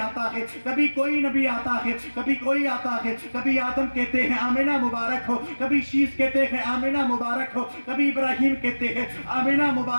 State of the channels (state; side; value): inverted; both; correlation -1.00